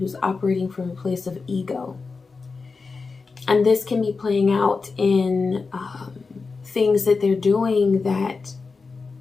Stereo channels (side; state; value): right; quieter; 4.4 dB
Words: operating from a place of ego. And this can be playing out in things that they're doing that